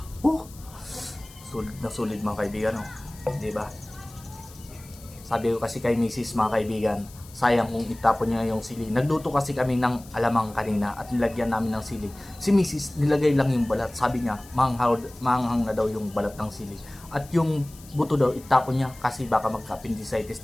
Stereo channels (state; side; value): noise; left; hiss, 21 dB below the sound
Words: Sulit na sulit mga kaibigan, oh. Diba? Sabi ko kasi kay Mrs. mga kaibigan, sayang kung itapon niya yung sili. Nagluto kasi kami ng alamang kanina at nilagyan namin ng sili. Si Mrs. nilagay lang yung balat. Sabi niya, manghang na daw yung balat ng sili. At yung buto daw, itapon niya kasi baka magka-appendicitis